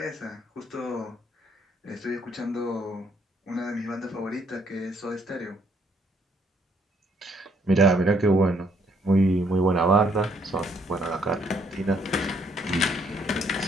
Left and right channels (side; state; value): both; normal; correlation 0.68